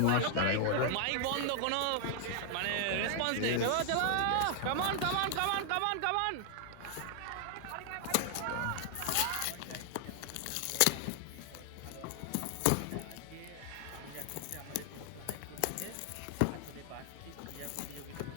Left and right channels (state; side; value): different; both; correlation 0.00